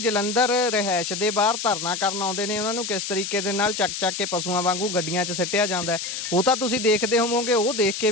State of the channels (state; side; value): noise; left; hiss, 5 dB below the sound